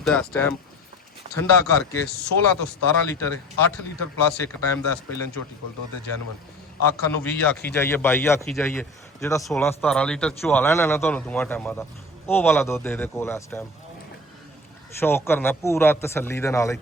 ਇਸ ਟਾਈਮ ਠੰਡਾ ਕਰਕੇ 16 ਤੋਂ 17 ਲੀਟਰ ਹੈ। 8 ਲੀਟਰ ਪਲੱਸ ਇੱਕ ਟਾਈਮ ਦਾ ਇਸ ਪਹਿਲਾਂ ਝੋਟੀ ਕੋਲ ਦੁੱਧ ਹੈ ਜੈਨੂਅਨ। ਆਖਾਂ ਨੂੰ 20 ਆਖੀ ਜਾਈਏ, 22 ਆਖੀ ਜਾਈਏ, ਜਿਹੜਾ 16-17 ਲੀਟਰ ਚੁਆ ਲੈਣਾ ਨਾ ਤੁਹਾਨੂੰ ਦੋਵਾਂ ਟਾਈਮਾਂ ਦਾ, ਉਹ ਵਾਲਾ ਦੁੱਧ ਇਹਦੇ ਕੋਲ ਇਸ ਟਾਈਮ। ਸ਼ੌਕ ਕਰਨਾ ਪੂਰਾ ਤਸੱਲੀ ਦੇ ਨਾਲ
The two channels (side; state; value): both; normal; correlation 0.40